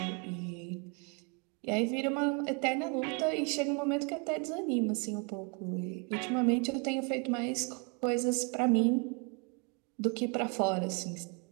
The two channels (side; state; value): left; quieter; 32.9 dB